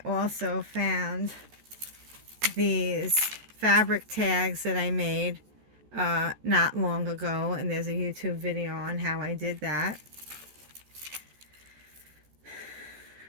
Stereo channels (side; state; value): left; late; 14 ms